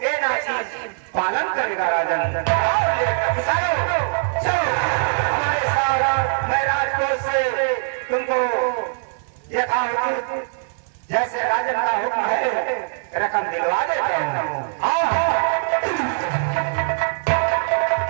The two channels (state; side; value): silent; left; 55 dB below the other